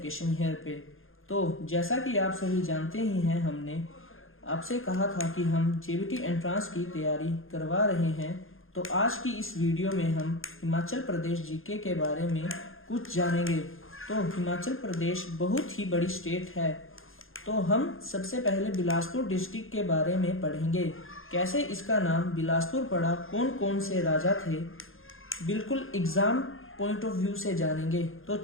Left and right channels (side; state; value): right; late; 0.60 ms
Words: here पे। तो जैसा कि आप सभी जानते ही हैं, हमने आपसे कहा था कि हम जेबीटी एंट्रांस की तैयारी करवा रहे हैं। तो आज की इस वीडियो में हम हिमाचल प्रदेश जीके के बारे में कुछ जानेंगे। तो हिमाचल प्रदेश बहुत ही बड़ी स्टेट है। तो हम सबसे पहले बिलासपुर डिस्ट्रिक्ट के बारे में पढ़ेंगे। कैसे इसका नाम बिलासपुर पड़ा, कौन कौन से राजा थे, बिल्कुल एग्जाम पॉइंट ऑफ व्यू से जानेंगे। तो